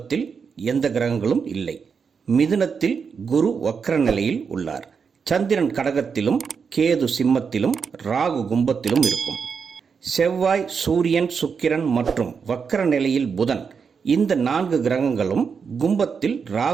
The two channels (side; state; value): left; quieter; 6.0 dB